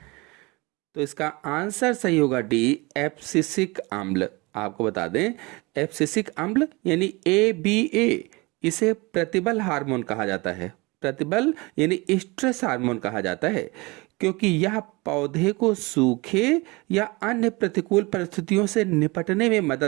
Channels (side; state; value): left; quieter; 25.0 dB